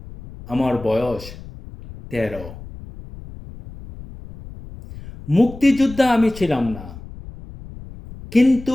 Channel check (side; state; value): left; noise; rumble, 16 dB below the sound